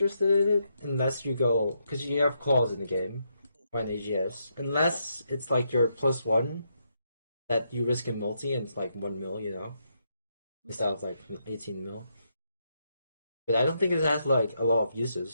in it unless you go because you have claws in the game or an AGS. Unless it's like your +1 that you risk in multi and it's like 1 mil, instead of like 18 mil. But I don't think it has like a lot of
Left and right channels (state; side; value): inverted; both; correlation -0.79